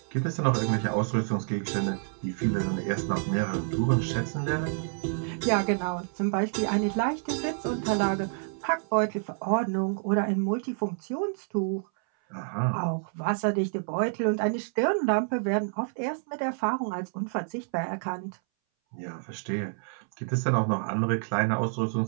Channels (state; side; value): silent; left; 59 dB below the other